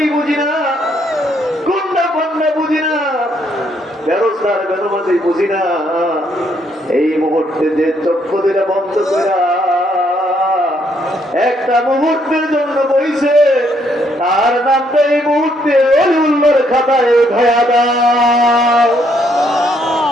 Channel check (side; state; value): both; normal; correlation 0.71